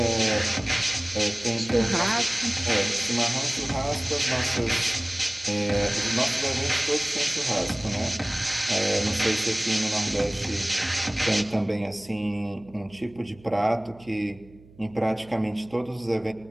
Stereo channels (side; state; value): right; noise; hum, 24 dB below the sound